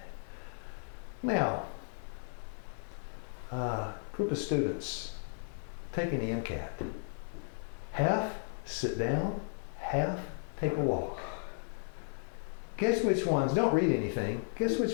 Now, group of students taking the MCAT. Half sit down, half take a walk. Guess which ones, don't read anything, guess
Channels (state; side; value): silent; right; digital silence